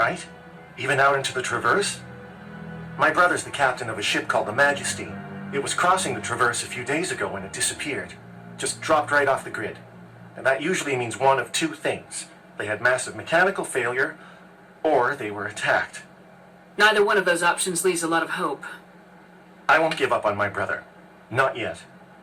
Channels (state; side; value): identical; both; correlation 1.00